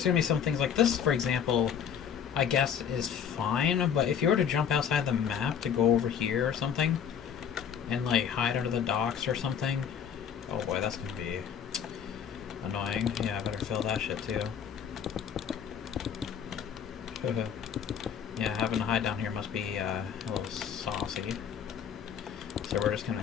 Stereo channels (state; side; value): quieter; right; 8.0 dB